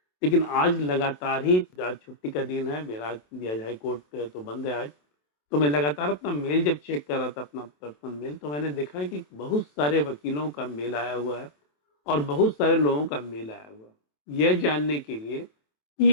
लेकिन आज लगातार ही, आज छुट्टी का दिन है मेरा, दिया हाई कोर्ट तो बंद है आज, तो मैं लगातार अपना मेल जब चेक कर रहा था, अपना पर्सनल मेल, तो मैंने देखा कि बहुत सारे वकीलों का मेल आया हुआ है और बहुत सारे लोगों का मेल आया हुआ है यह जानने के लिए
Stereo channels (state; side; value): late; right; 27 ms